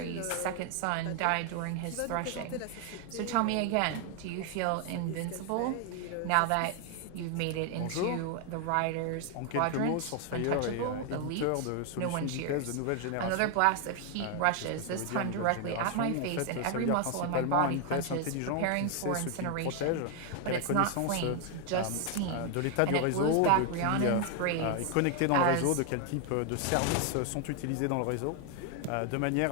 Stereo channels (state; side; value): different; both; correlation 0.01